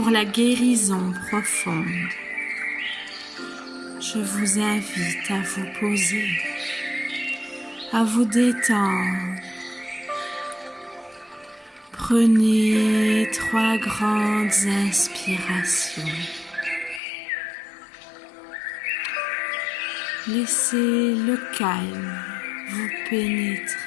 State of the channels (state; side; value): drops out; right; at 17.0 s